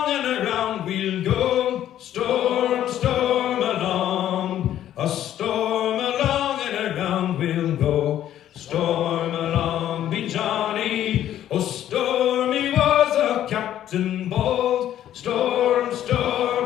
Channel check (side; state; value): right; quieter; 11.6 dB